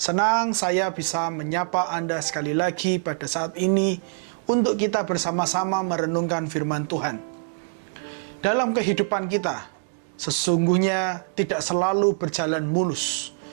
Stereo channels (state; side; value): silent; left; digital silence